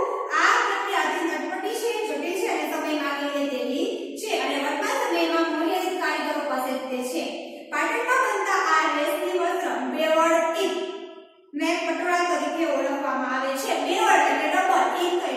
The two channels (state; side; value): identical; both; correlation 1.00